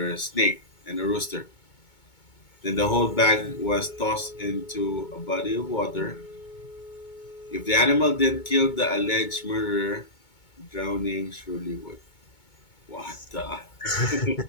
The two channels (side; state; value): right; late; 2.2 ms